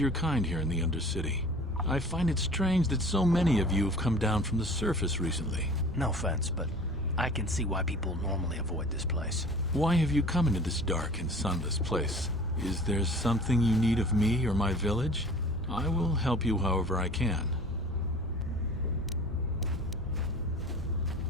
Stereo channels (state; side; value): normal; both; correlation 0.44